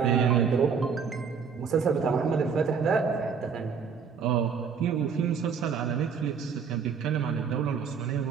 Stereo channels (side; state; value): left; quieter; 6.3 dB